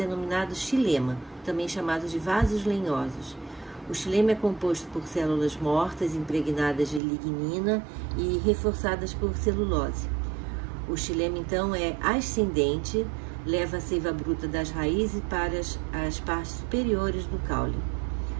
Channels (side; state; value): left; drops out; at 7.0 s